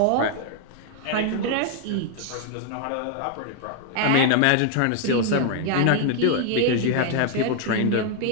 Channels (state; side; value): different; both; correlation 0.00